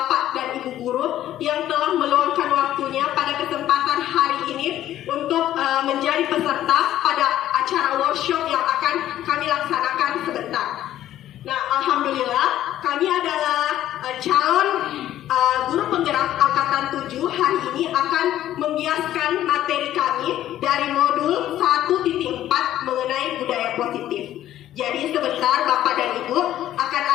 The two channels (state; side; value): quieter; right; 12.7 dB